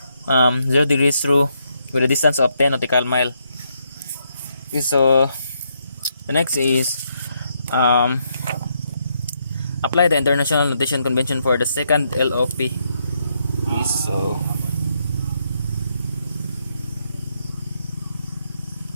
0 degrees true with a distance of 10 nautical mile. Okay, so the next is um, apply the International Notation Convention for the second LOP. Okay,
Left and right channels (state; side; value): inverted; both; correlation -0.77